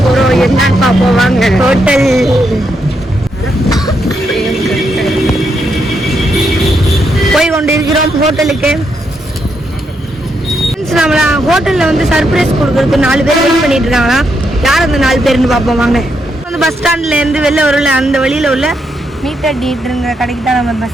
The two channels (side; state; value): both; normal; correlation 0.80